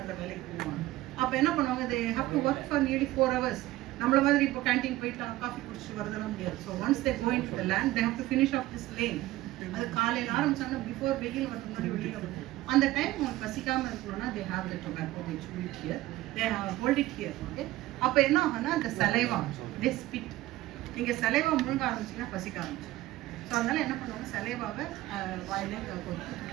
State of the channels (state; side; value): quieter; left; 16.8 dB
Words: வேலைக்கு போவாங்க. அப்ப என்ன பண்ணுவாங்க, they have to work for nearly 4 hours. நம்மள மாதிரி இப்போ கேண்டீன் போயிட்டு காஃபி குடிச்சிட்டு வரதெல்லாம் முடியாது. So once they go into the land, they have to finish off this lane. அது காலையில் ஆரம்பிச்சாங்கன்னா பிஃபோர் வெயில் வரது முன்னாடி வெளியில் வரும். அந்த டைம் அவங்க பசிக்காமல் இருக்கணும்னா they have the tobacco, they chew it here, they hold it here. Okay, அப்போ என்ன ஆகும்னா அந்த சலைவா தே ஸ்பிட். நீங்கள் சலைவா முழுங்க ஆரம்பிச்சிங்கன்னா பசிக்க ஆரம்பிச்சு. ஸோ அதனால என்ன பண்ணுவாங்க, சலைவாவை வாயிலே